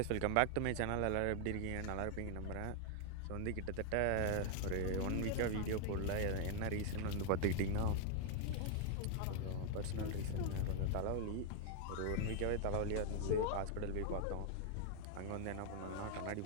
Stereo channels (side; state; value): both; different; correlation 0.00